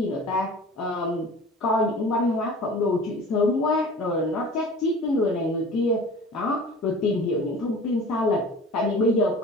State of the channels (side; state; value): both; normal; correlation 0.41